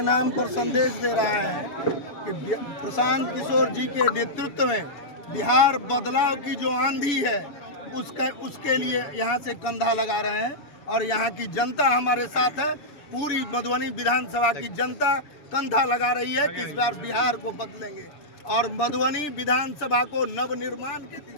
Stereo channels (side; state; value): right; late; 6.9 ms